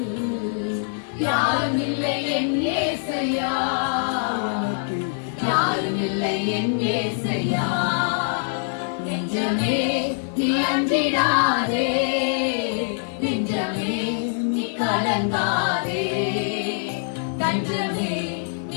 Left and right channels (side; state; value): right; silent; 60 dB below the other